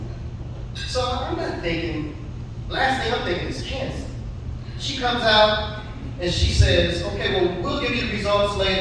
So I'm not thinking, last thing I'm thinking is cancer. She comes out and she says, okay, well, we'll give you the results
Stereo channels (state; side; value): identical; both; correlation 1.00